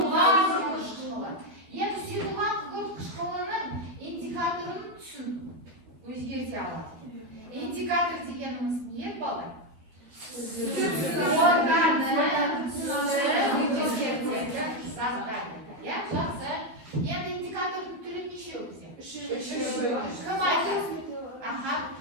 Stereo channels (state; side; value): late; left; 13 ms